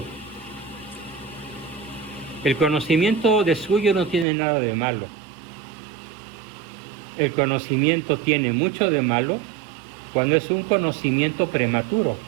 El conocimiento de suyo no tiene nada de malo. El conocimiento tiene mucho de malo cuando es un conocimiento prematuro.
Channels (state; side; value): drops out; left; at 4.2 s